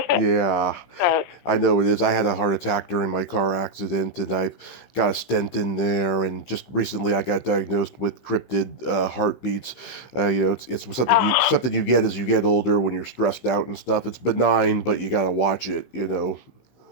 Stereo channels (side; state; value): right; late; 15 ms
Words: Yeah, So, I know it is. I had a heart attack during my car accident, and I got a stent in there. And just recently, I got diagnosed with cryptid heartbeats. You know, it's something you get as you get older when you're stressed out and stuff. It's benign, but you gotta watch it. You know.